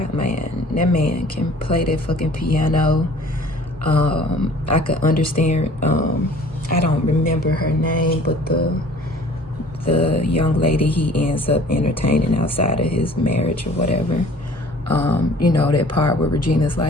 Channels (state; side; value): normal; both; correlation 0.50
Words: Man, that man can play that fucking piano. I could understand, I don't remember her name, but the young lady he ends up entertaining outside of his marriage or whatever. You know, that part where Regina's